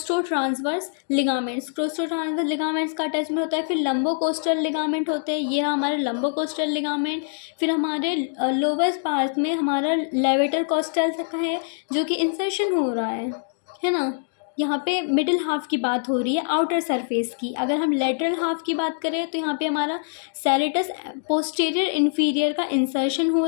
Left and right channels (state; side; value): silent; right; digital silence